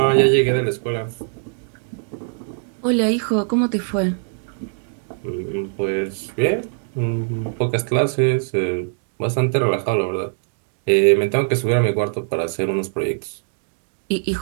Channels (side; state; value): left; silent; 64 dB below the other